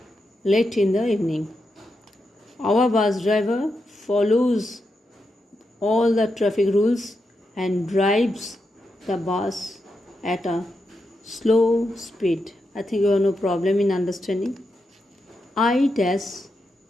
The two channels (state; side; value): normal; both; correlation 0.86